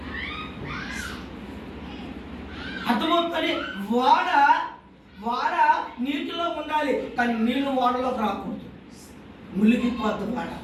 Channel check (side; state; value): both; identical; correlation 1.00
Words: అర్థమవుతుంది. వాడ నీటిలో ఉండాలి, కానీ నీళ్లు వాడలోకి రాకూడదు, మునిగిపోద్దు వాడ.